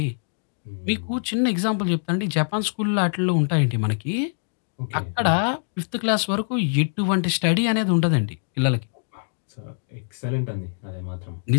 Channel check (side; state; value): right; silent; digital silence